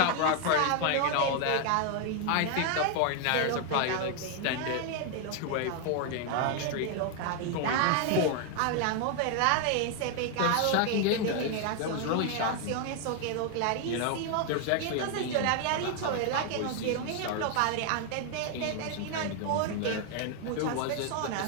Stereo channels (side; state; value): both; different; correlation 0.00